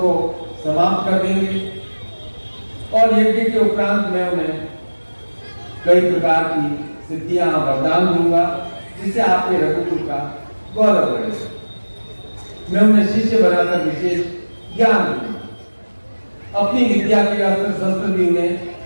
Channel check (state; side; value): inverted; both; correlation -1.00